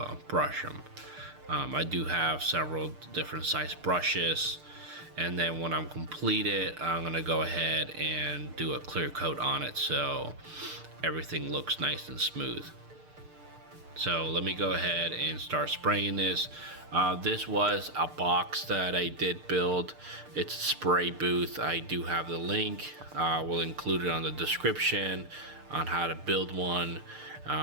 brush them. I do have several different size brushes, and then when I'm completed, I'm going to go ahead and do a clear coat on it so everything looks nice and smooth. So let me go ahead and start spraying this. This was a box that I did build. It's a spray booth. I do have the link. We'll include it on the description on how to build one.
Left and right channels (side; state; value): left; late; 6.6 ms